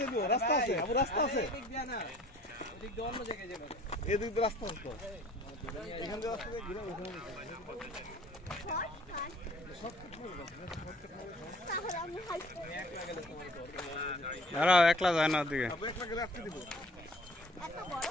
দিয়ে রাস্তা আছে, আবু রাস্তা আছে। এদিক দিয়ে না, ওদিক দিয়ে অন্য জায়গায় যাবে। এদিক দিয়ে রাস্তা আছে তো। এখান দিয়ে রাস্তা দিয়ে ঘুরে ওখানে। দাঁড়াও, একলা যায় না ওদিকে। আবু একলা গেলে আটকে দিব। এত বড়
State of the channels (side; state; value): both; normal; correlation 0.53